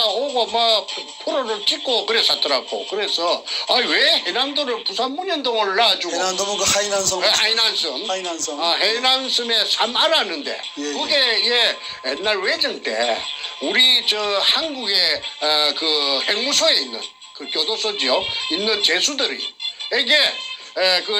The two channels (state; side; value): identical; both; correlation 1.00